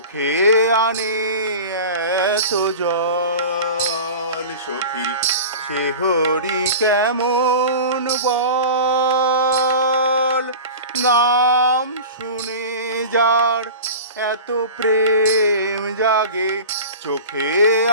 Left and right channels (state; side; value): inverted; both; correlation -0.34